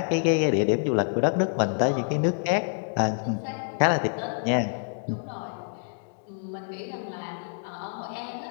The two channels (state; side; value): silent; right; digital silence